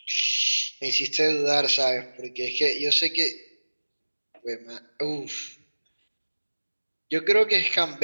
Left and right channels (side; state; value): both; inverted; correlation -1.00